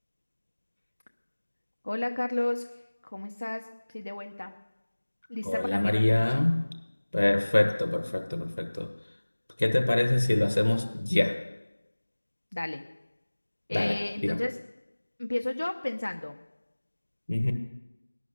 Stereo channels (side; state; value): both; inverted; correlation -1.00